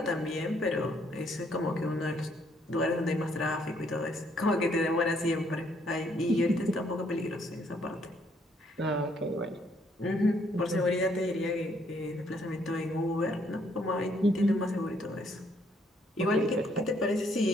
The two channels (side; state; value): both; normal; correlation 0.69